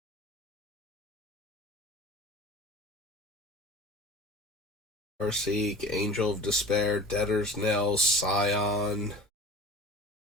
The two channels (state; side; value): normal; both; correlation 0.41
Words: Farseek, Angel of Despair, Debtor's Knell, Scion.